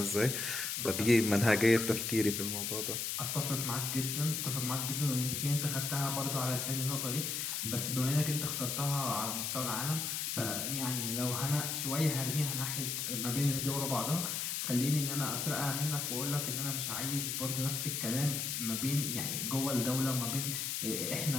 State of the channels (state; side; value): noise; left; hiss, 1 dB below the sound